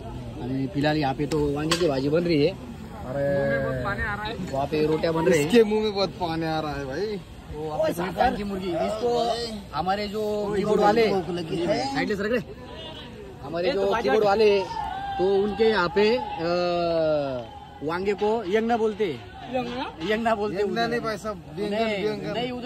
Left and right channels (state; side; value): identical; both; correlation 1.00